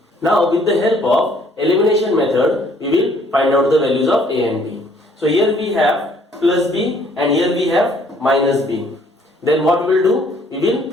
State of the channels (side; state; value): both; normal; correlation 0.62